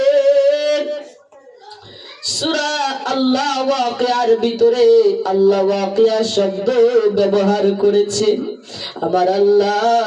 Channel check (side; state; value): both; identical; correlation 1.00